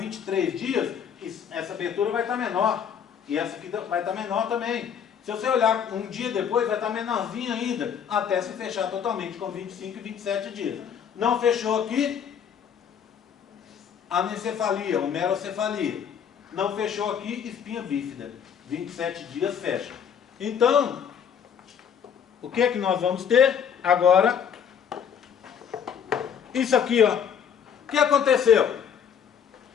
dias, essa abertura vai estar menor, e essa aqui vai estar menor também. Se você olhar um dia depois, vai estar menorzinho ainda, até se fechar totalmente com 25 e 27 dias. Não fechou aqui, anencefalia, homerocefalia. Não fechou aqui, espinha bífida. 27 dias fecha. Então, o que é que nós vamos ter? Agora, isso aqui, ó. O que aconteceu?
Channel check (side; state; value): right; quieter; 7.9 dB